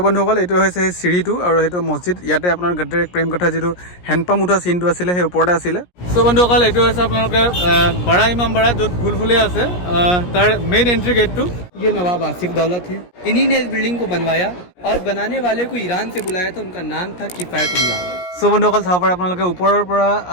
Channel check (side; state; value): right; late; 17 ms